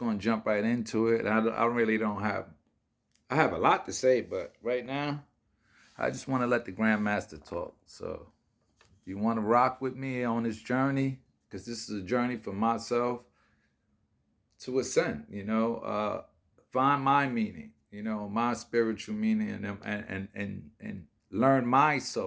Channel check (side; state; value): both; identical; correlation 1.00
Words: to jump right into it. I really don't have, I have a lot to say, but right now, I just want to let the Grandmaster talk. So, if you want to rock with me on this journey, because this is a journey for myself to ascend, find my meaning, my spiritual meaning, and learn my